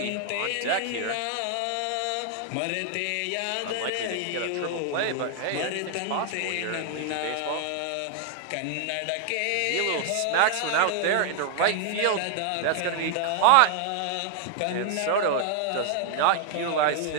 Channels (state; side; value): different; both; correlation 0.00